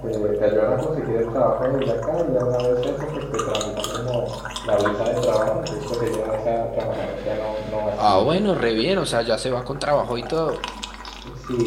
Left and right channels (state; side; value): identical; both; correlation 1.00